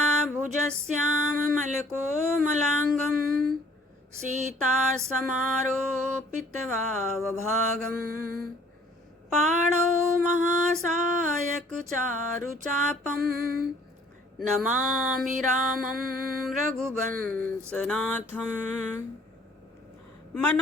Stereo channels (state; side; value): normal; both; correlation 0.57